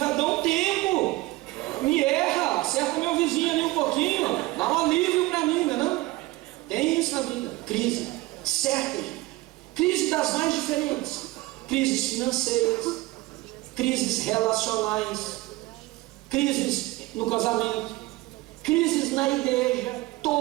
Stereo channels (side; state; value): left; quieter; 20.2 dB